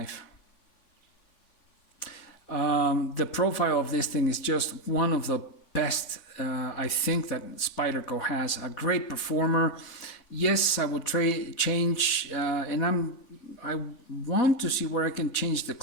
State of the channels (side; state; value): right; late; 4.2 ms